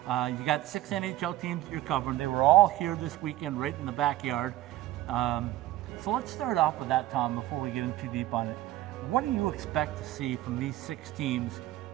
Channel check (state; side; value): quieter; left; 15.4 dB